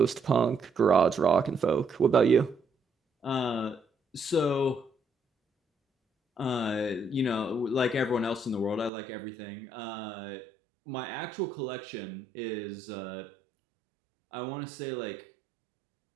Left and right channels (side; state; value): left; drops out; at 8.9 s